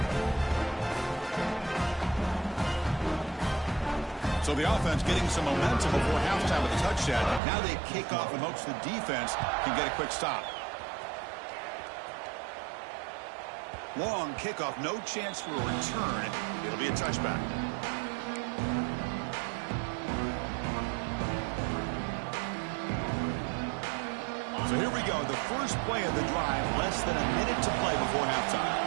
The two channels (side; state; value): left; drops out; at 7.4 s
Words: So the offense getting some momentum before halftime with a touchdown. Now they kick off in hopes the defense can get a quick stop. Long kickoff, no chance for a return. It'll be a touchback. So here we go, the first play of the drive, less than a minute to play before halftime.